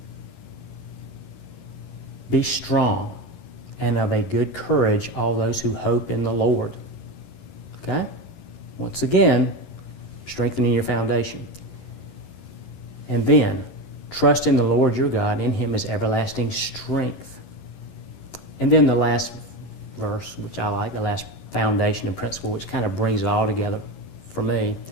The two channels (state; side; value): late; right; 11 ms